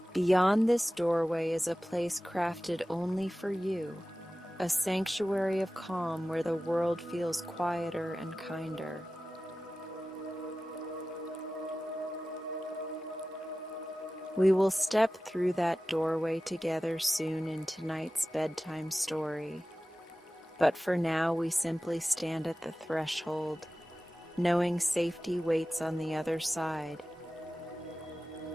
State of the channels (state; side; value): normal; both; correlation 0.96